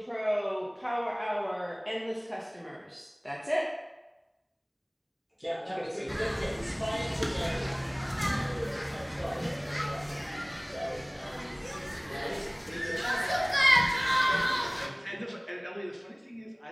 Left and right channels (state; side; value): identical; both; correlation 1.00